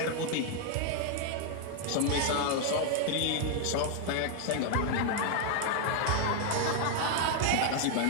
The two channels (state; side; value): different; both; correlation 0.00